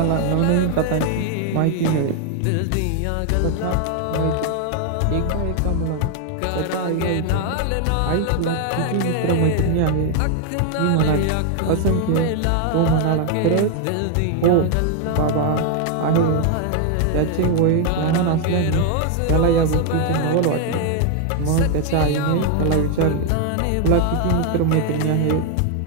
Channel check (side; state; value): both; different; correlation 0.00